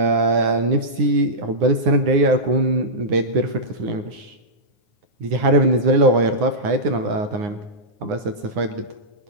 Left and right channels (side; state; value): left; late; 9.6 ms